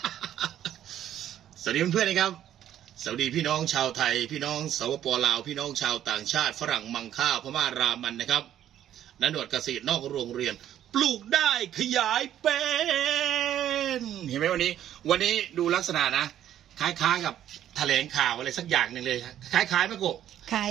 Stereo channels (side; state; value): left; quieter; 11.2 dB